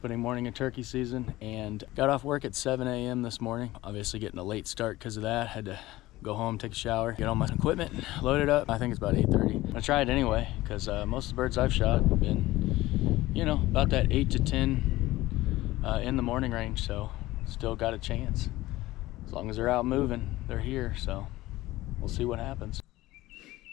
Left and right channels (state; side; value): quieter; right; 17.6 dB